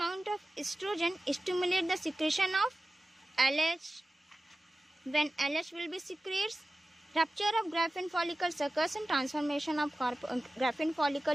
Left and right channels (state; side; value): normal; both; correlation 0.96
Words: of estrogen stimulate the secretion of LH. When LH will be secreted, rupture of Graafian follicle occurs and transformation of Graafian